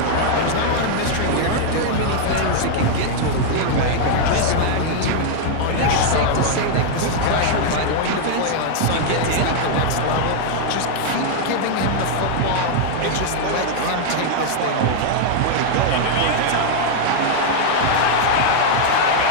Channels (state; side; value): different; both; correlation 0.00